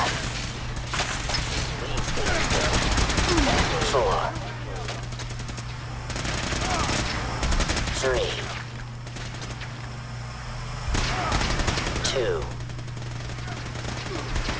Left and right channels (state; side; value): identical; both; correlation 1.00